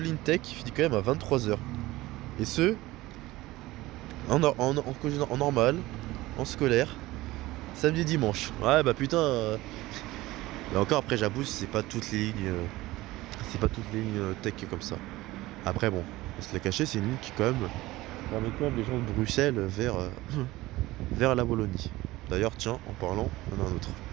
ligne tech qui finit quand même à 23h. Et ce, en normal, en scolaire, samedi, dimanche. Ouais, bah putain. Et encore, après, j'abuse, c'est pas toutes les lignes. C'est pas toutes les lignes tech comme ça. Après, bon, On se l'a caché, c'est une ligne qui quand même ramène quand même les gens de Bruxelles vers, vers la Wallonie. D'ailleurs, tiens, en parlant, on a un autre.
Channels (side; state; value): left; quieter; 18.4 dB